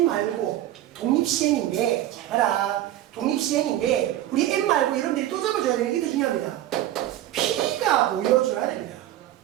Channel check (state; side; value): quieter; left; 13.4 dB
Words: 말고 독립시행인데 봐라. 독립시행인데 우리 n 말고 여러분들이 또 잡아줘야 되는 게 더 중요합니다. p가 보여줘야 됩니다.